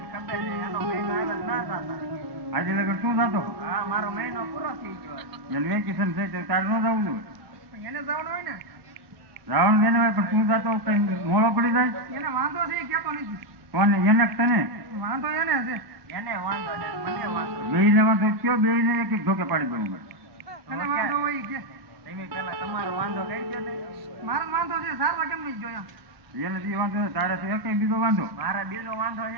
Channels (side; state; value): left; late; 1.0 ms